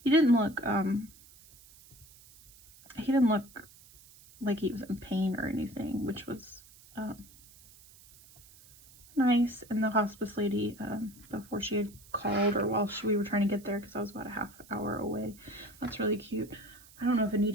He didn't look like he was in pain or anything, which was, nice. And the hospice lady, before she had called, or while we were trying to get there, because I was about a half hour away, that's really cute. I don't know if it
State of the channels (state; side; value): noise; right; hiss, 23 dB below the sound